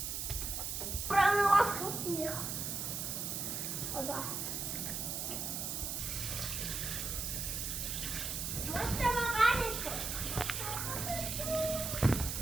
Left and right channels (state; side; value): noise; right; hiss, 3 dB below the sound